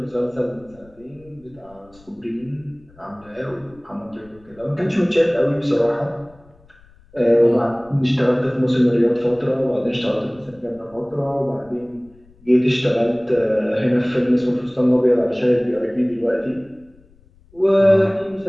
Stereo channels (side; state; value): left; noise; rumble, 28 dB below the sound